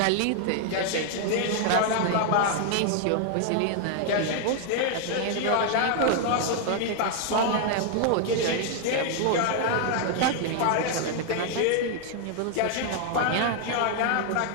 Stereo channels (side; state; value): both; different; correlation 0.00